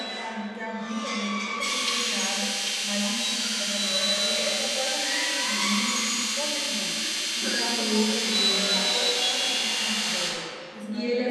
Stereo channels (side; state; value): both; identical; correlation 1.00